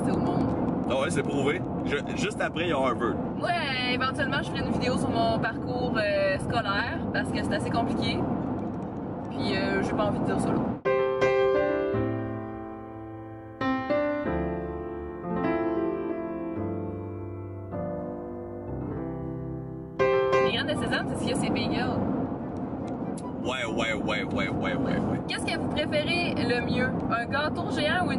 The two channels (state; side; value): identical; both; correlation 1.00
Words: au monde. Ah ouais, c'est prouvé. Juste après, il y a Harvard. Ouais, éventuellement, je ferai une vidéo sur mon parcours scolaire, parce que c'est assez compliqué. Puis, j'ai pas envie de dire ça là. Les graines de sésame, c'est ce qu'il y a, c'est bagel. Ouais. Qu'est-ce que vous préférez le mieux? Un gâteau géant ou